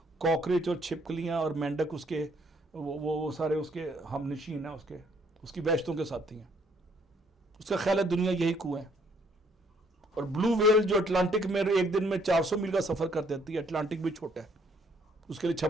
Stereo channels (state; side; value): normal; both; correlation 0.66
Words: کاکریچ اور چھپکلیاں اور مینڈک اس کے وہ سارے اس کے ہم نشین ہیں, اس کی وحشتوں کے ساتھی ہیں. اس کا خیال ہے دنیا یہی کنویں ہے. اور بلو ویل جو اٹلانٹک میں ایک دن میں 400 میل کا سفر کر دیتی ہے, اٹلانٹک بھی چھوٹا ہے, اس کے لیے